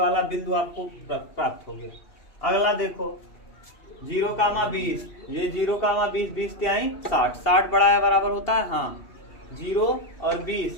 बिंदु आपको प्राप्त हो गया। अगला देखो 0,20, ये 0,20, 20 तिहाई 60, 60 बड़ा है बराबर होता है, हाँ। 0 और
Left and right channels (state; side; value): late; right; 2.7 ms